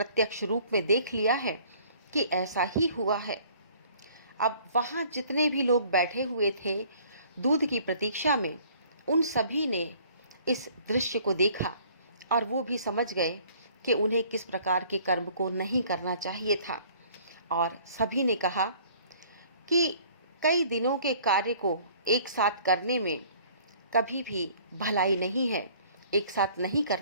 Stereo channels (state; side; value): inverted; both; correlation -0.55